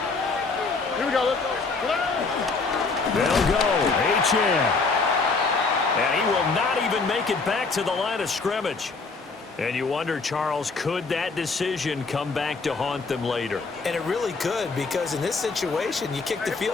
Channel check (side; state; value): right; quieter; 4.1 dB